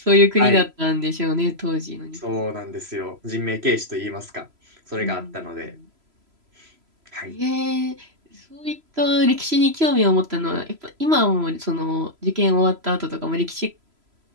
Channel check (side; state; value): left; late; 3.0 ms